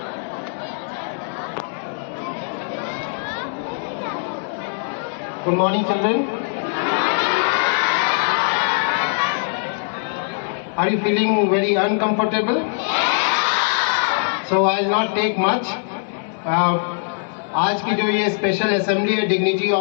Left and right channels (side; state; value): right; silent; digital silence